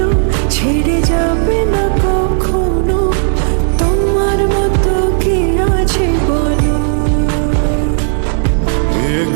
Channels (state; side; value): silent; left; 72 dB below the other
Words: ছেড়ে যাবে না কখনো, তোমার মতো কে আছে বলো। এ